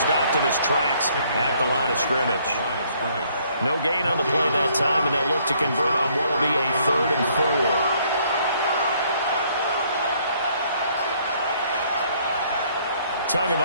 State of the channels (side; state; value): both; inverted; correlation -0.65